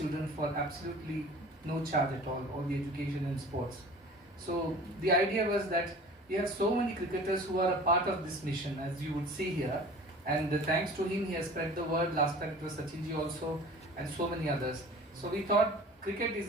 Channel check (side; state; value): both; normal; correlation 0.43